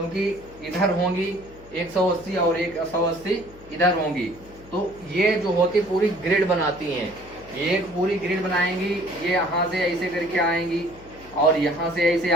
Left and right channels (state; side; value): noise; left; hum, 22 dB below the sound